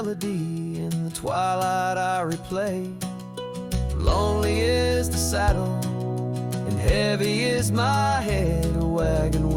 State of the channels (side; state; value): both; identical; correlation 1.00